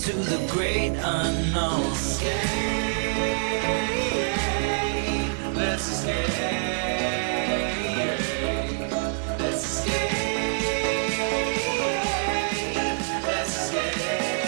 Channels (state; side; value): silent; left; digital silence